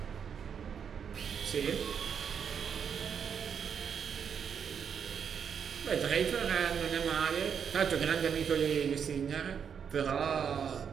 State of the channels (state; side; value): quieter; left; 7.3 dB